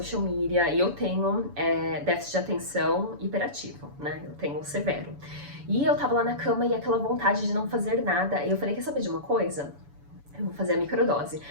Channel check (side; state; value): left; late; 7.0 ms